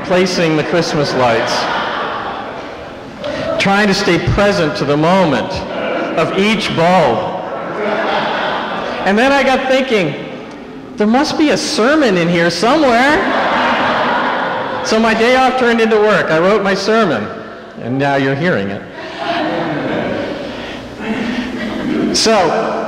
the Christmas lights. Trying to stay present to the moment of each bulb. And then I got thinking, there must be a sermon in here somewhere. So my day off turned into work. I wrote my sermon, and now you're hearing it. So,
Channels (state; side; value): identical; both; correlation 1.00